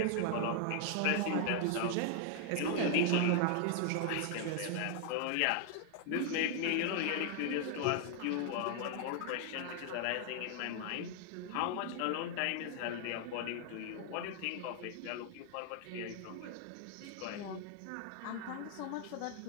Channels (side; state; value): both; different; correlation 0.00